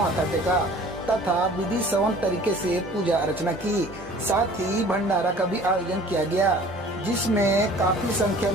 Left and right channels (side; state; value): both; normal; correlation 0.48